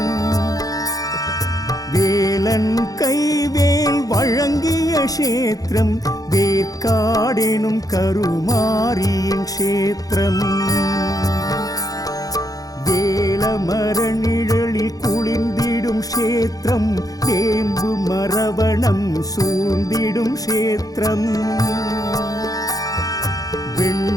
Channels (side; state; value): right; late; 0.17 ms